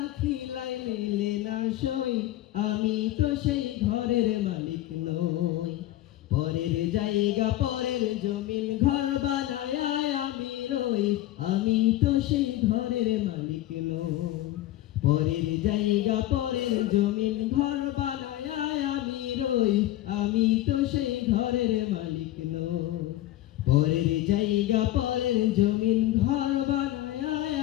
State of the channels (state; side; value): quieter; right; 15.0 dB